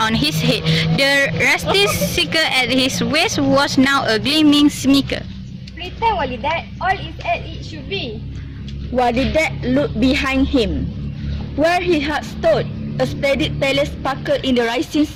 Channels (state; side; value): identical; both; correlation 1.00